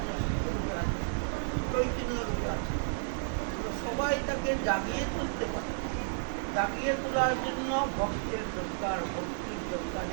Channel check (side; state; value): left; silent; digital silence